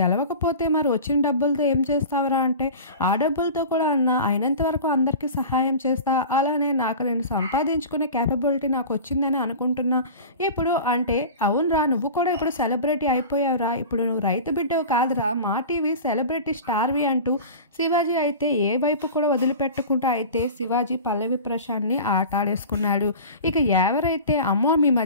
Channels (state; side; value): inverted; both; correlation -0.35